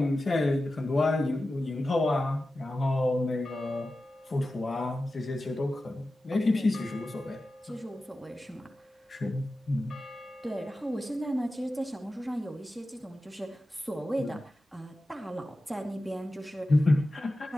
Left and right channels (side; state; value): both; normal; correlation 0.94